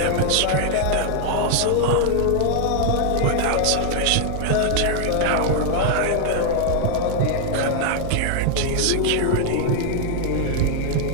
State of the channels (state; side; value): different; both; correlation 0.00